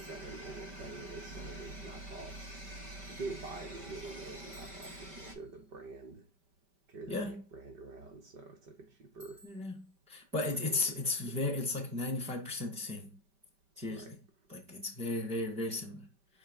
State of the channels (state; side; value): late; left; 5.1 ms